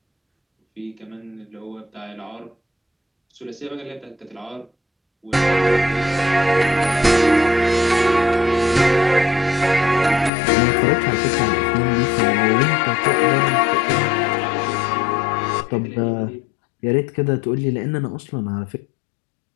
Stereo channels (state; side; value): drops out; right; at 10.3 s